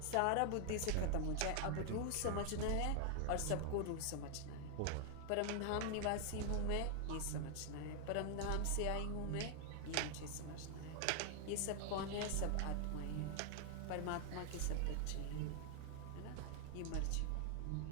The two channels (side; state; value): both; different; correlation 0.00